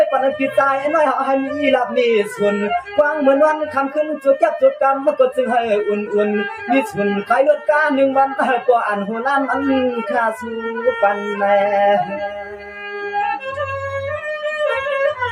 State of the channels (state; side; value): identical; both; correlation 1.00